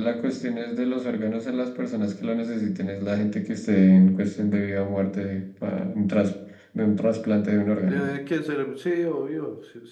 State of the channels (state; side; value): identical; both; correlation 1.00